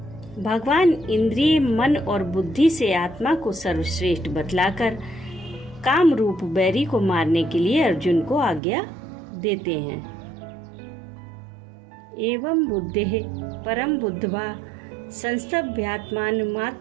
भगवान इंद्रिय, मन और बुद्धि से आत्मा को सर्वश्रेष्ठ बतलाकर काम रूप बैरी को मारने के लिए अर्जुन को आज्ञा देते हैं। एवं बुद्धेः परम बुद्ध्वा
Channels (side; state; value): left; drops out; at 8.6 s